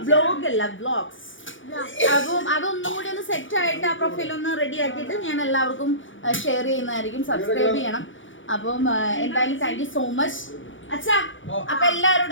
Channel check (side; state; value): right; late; 0.56 ms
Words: വ്ലോഗ് അല്ല, വ്ലോഗ്സ്. അപ്പം അതൊന്നും കൂടി ഒന്ന് സെറ്റ് ആയിട്ട് ആ പ്രൊഫൈൽ ഒന്ന് റെഡി ആക്കിയിട്ട് ഞാൻ എല്ലാവർക്കും ഷെയർ ചെയ്യുന്നതായിരിക്കും. സബ്സ്ക്രൈബ് ചെയ്യണം. അപ്പം എന്തായാലും താങ്ക് യു സോ മച്ച് അച്ഛാ. അപ്പൊ